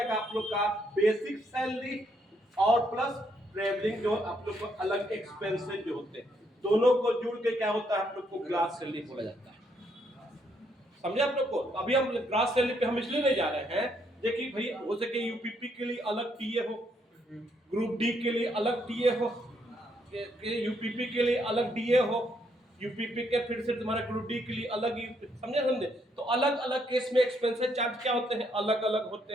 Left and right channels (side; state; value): both; normal; correlation 0.73